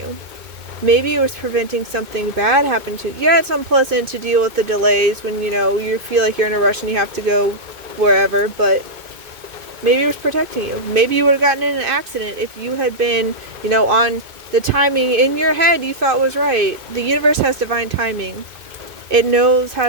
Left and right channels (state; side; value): late; left; 2.5 ms